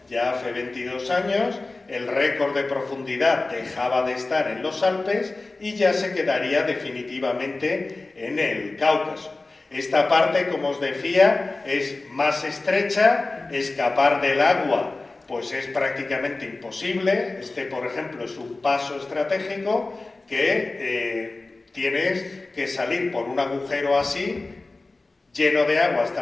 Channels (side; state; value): right; quieter; 3.3 dB